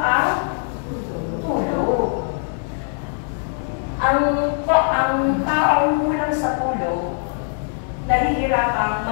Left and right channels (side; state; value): right; silent; 65 dB below the other